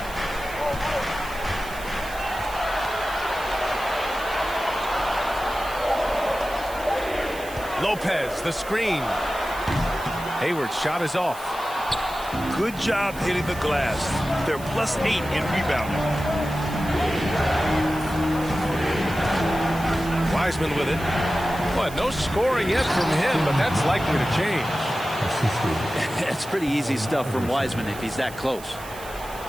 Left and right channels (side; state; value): right; noise; hiss, 16 dB below the sound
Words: Lopez, the screen. Hayward's shot is off. Good job hitting the glass. They're +8 in rebounding. Wiseman with it. But no scoring yet from him, but that's likely to change. It's pretty easy stuff from Wiseman if he's that close.